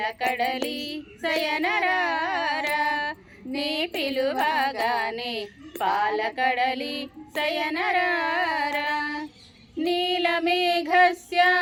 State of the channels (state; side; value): identical; both; correlation 1.00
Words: శయనరారా నీ పిలువగానే పాలకడలి శయనరారా